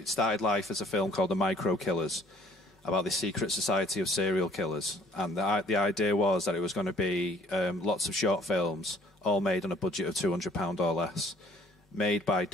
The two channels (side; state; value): both; normal; correlation 0.58